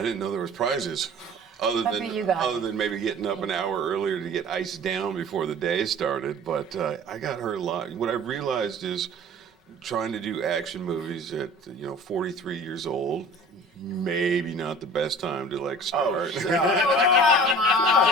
didn't know there was prizes. Other than maybe getting up an hour earlier to get iced down before the day started. But I got hurt a lot. What I realized is trying to do action movies at 43 years old, maybe not the best time to start. Oh, come on.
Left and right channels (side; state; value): both; normal; correlation 0.44